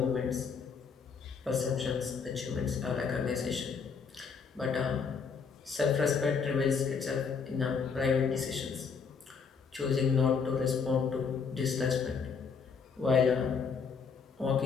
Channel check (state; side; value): quieter; right; 5.8 dB